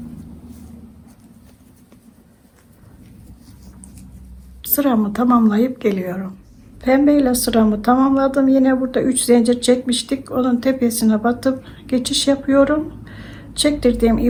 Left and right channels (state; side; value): identical; both; correlation 1.00